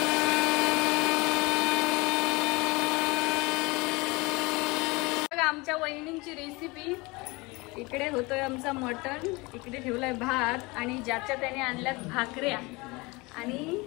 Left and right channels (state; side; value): quieter; right; 24.6 dB